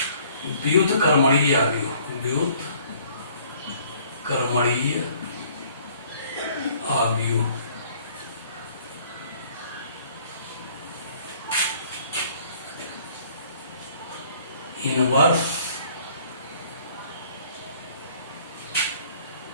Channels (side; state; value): both; inverted; correlation -0.58